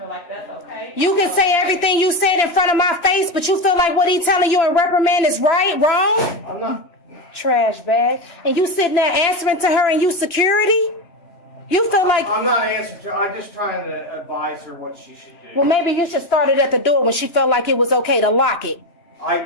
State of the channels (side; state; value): right; late; 2.9 ms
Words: like that's okay. You can say everything you said in front of my face, but you feel like what he telling you in reprimand is wrong? I'm not. Trash bag. And you sitting there answering to her and you security? You feel like... I'm not answering to her. I'm just trying to advise her what she should do. Well, maybe you should start it at the door when she felt like it was okay to lock it.